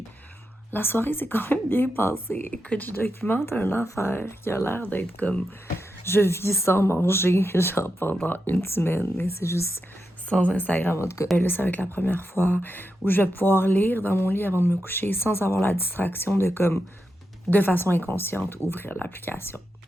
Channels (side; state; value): both; normal; correlation 0.87